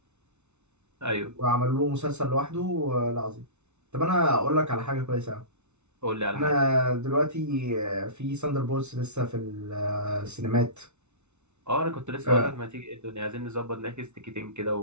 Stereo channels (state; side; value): late; left; 0.82 ms